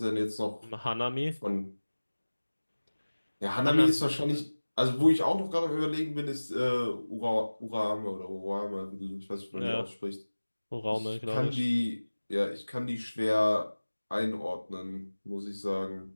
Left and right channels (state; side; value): inverted; both; correlation -1.00